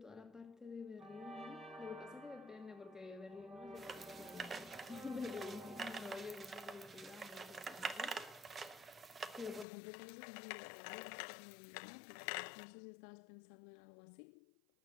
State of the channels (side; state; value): right; drops out; at 9.7 s